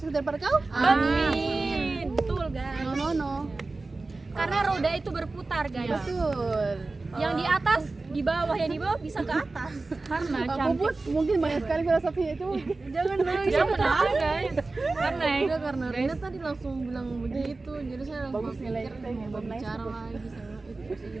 daripada kau. Amin. Betul guys. No. Karena roda itu berputar guys. Betul. Yang di atas, di bawah, yang di bawah bisa ke atas. Karena Aku cantik. pun mungkin banyak sekali filosofinya itu. Jangan ada guys. Karena Udah karena Rina tadi langsung bilang begitu, jadi saya langsung Bagus nilai pikir kita yang mau bagus. bicara lagi sama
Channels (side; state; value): left; quieter; 3.4 dB